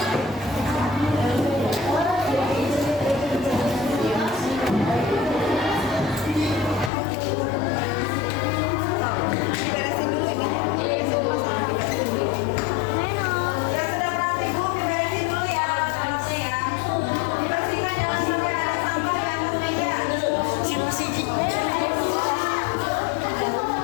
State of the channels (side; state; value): right; drops out; at 6.9 s